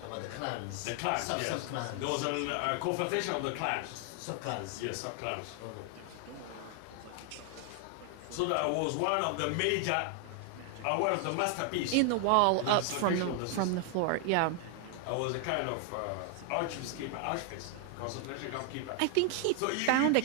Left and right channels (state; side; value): different; both; correlation 0.00